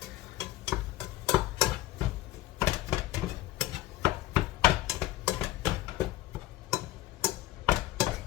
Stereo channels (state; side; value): quieter; right; 15.7 dB